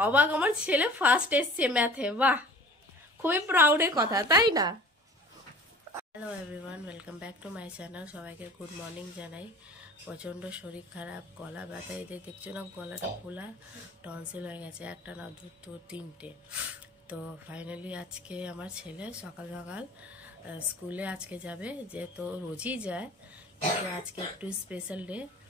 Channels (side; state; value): both; normal; correlation 0.45